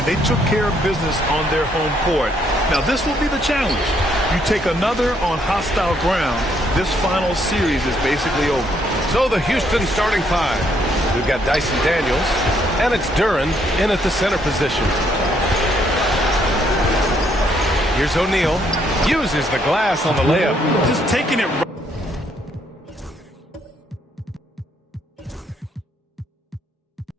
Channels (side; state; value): both; normal; correlation 0.71